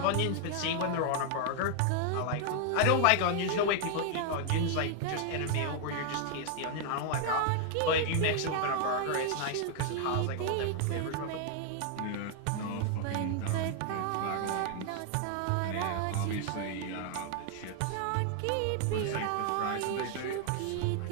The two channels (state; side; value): different; both; correlation 0.00